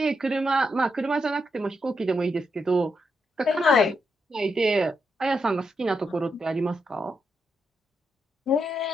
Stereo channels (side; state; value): both; normal; correlation 0.82